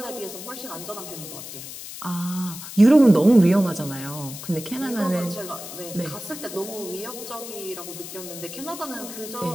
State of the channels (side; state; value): left; noise; hiss, 11 dB below the sound